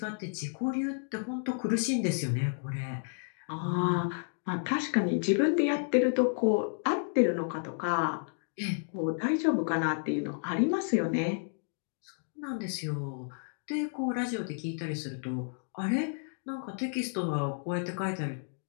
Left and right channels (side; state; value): right; silent; digital silence